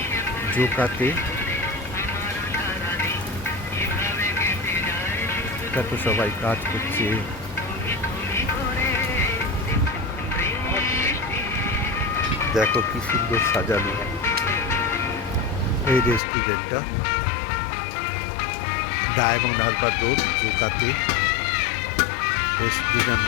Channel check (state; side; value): drops out; right; at 16.2 s